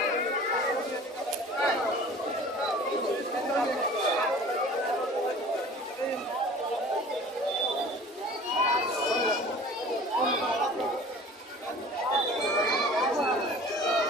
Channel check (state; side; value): normal; both; correlation 0.44